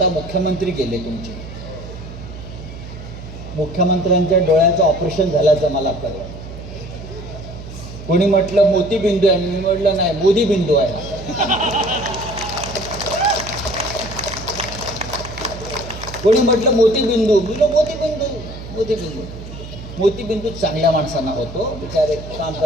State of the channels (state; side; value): noise; right; hum, 12 dB below the sound